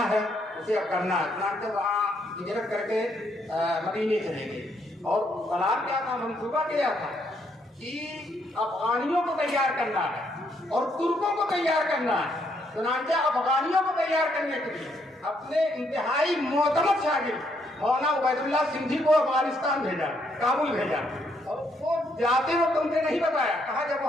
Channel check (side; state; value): both; normal; correlation 0.73